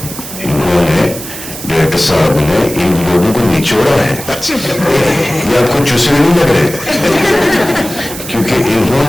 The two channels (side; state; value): right; noise; hiss, 11 dB below the sound